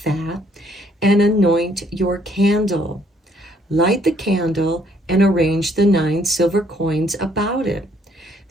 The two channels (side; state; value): both; normal; correlation 0.66